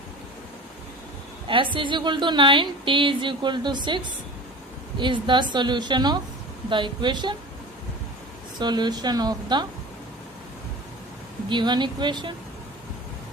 s is equal to 9, t is equal to 6 is the solution of the equation, solution of the given equation.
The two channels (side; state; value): both; normal; correlation 0.36